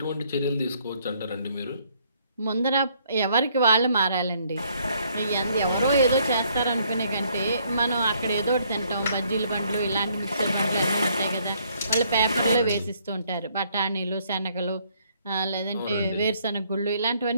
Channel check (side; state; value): both; inverted; correlation -0.67